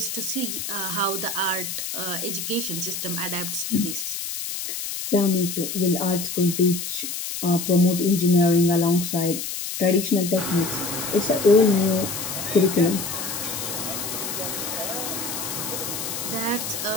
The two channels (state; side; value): noise; left; hiss, 5 dB below the sound